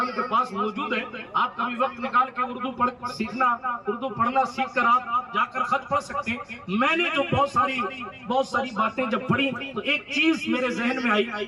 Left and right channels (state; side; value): identical; both; correlation 1.00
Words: کے پاس موجود ہے. آپ کبھی وقت نکال کے اردو پڑھنا سیکھ کر آپ جا کر خط پڑھ سکتے ہیں. میں نے جو بہت ساری باتیں جب پڑھی تو ایک چیز میرے ذہن میں آئی,